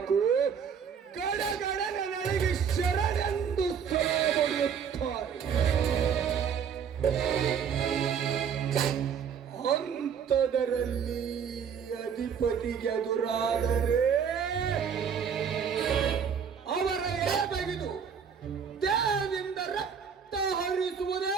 ಗಡಗಡ ನನಗೆ ಶರಣೆಂದು ಹೊಡೆಯುತ್ತಾರೆ. ಅಂಥದರಲ್ಲಿ ಅಧಿಪತಿಗೆ ಎದುರಾದರೆ ಅವರ ಎಳೆ ತೆಗೆದು ದೇಹದಿಂದ ರಕ್ತ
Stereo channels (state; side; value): quieter; left; 7.2 dB